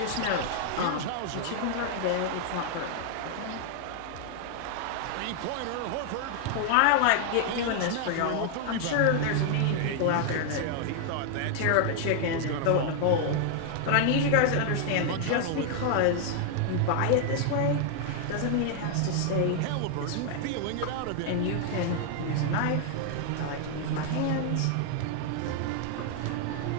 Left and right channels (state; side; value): different; both; correlation 0.00